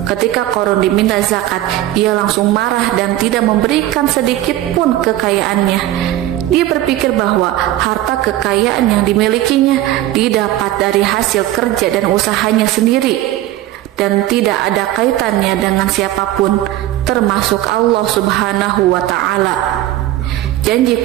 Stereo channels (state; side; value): quieter; left; 14.4 dB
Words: Ketika Qarun diminta zakat, ia langsung marah dan tidak memberikan sedikit pun kekayaannya. Dia berpikir bahwa harta kekayaan yang dimilikinya didapat dari hasil kerja dan usahanya sendiri, dan tidak ada kaitannya dengan siapapun, termasuk Allah Subhanahu wa Ta'ala. Janji